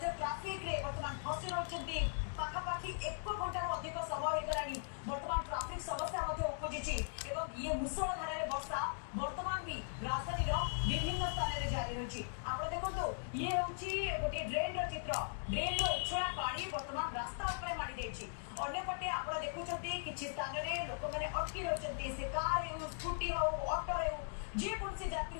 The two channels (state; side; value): silent; right; digital silence